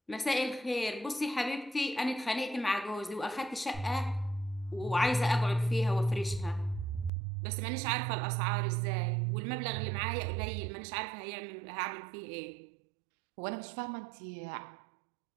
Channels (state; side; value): drops out; left; at 7.1 s